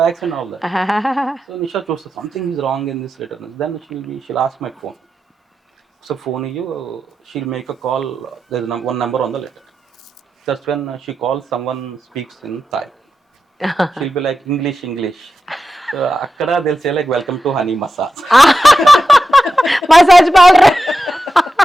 bags and all that. So Nisha chose something is wrong in this letter. Then she'll ask my phone. So phone you, she'll make a call. There's one number on the letter. That's when she calls, someone speaks in Thai. She'll be like English. So akkada they'll say like, welcome to honey massage. Massage powder.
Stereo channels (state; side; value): normal; both; correlation 0.90